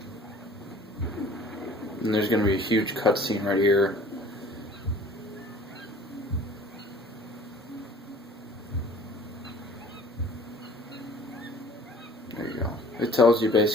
And there's going to be a huge cutscene right here. There you go. It tells you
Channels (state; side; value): normal; both; correlation 0.50